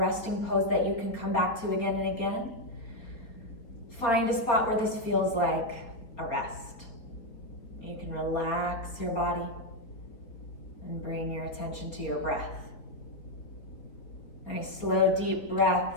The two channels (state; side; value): late; right; 4.1 ms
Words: pose that you can come back to again and again. Find a spot where this feels like a rest. You can relax your body and bring your attention to your breath. Nice slow, deep